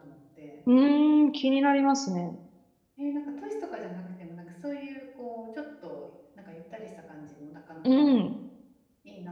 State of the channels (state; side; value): identical; both; correlation 1.00